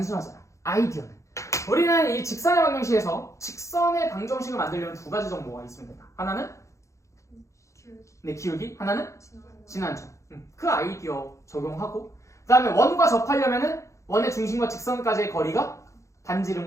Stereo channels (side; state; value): right; late; 0.15 ms